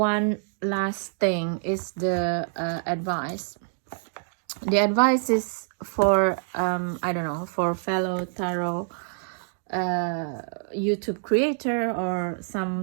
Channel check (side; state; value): left; silent; digital silence